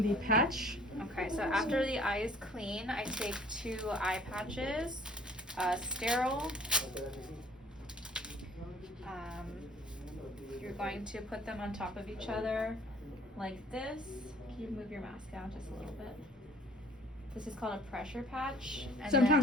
the patch. Okay, so after the eye is clean, I take 2 eye patches, sterile. You're going to put them on top of each other like this. Can you move your mask down just a little bit? This is called a pressure patch. And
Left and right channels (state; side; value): normal; both; correlation 0.54